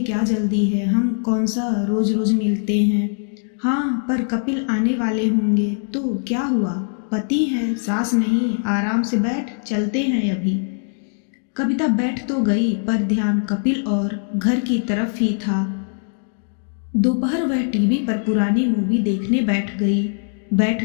क्या जल्दी है? हम कौन सा रोज रोज मिलते हैं। हाँ, पर कपिल आने वाले होंगे तो क्या हुआ? पति है, सास नहीं। आराम से बैठ, चलते हैं अभी। कविता बैठ तो गई, पर ध्यान कपिल और घर की तरफ ही था। दोपहर वह टीवी पर पुरानी मूवी देखने बैठ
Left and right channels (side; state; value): right; silent; digital silence